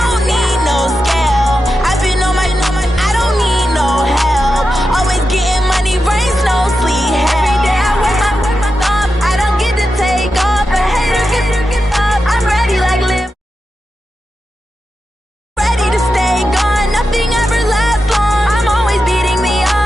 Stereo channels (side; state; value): both; normal; correlation 0.90